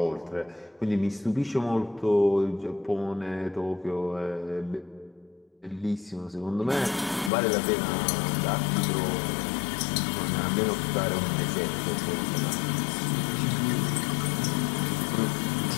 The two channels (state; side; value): drops out; right; at 7.3 s